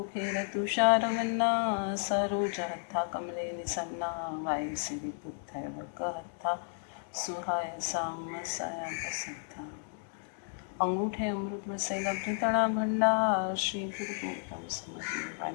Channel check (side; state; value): right; silent; digital silence